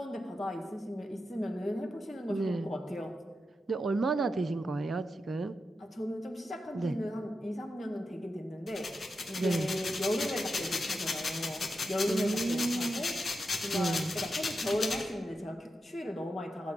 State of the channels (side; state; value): both; normal; correlation 0.88